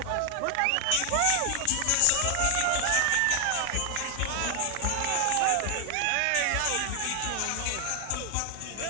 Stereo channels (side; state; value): both; different; correlation 0.00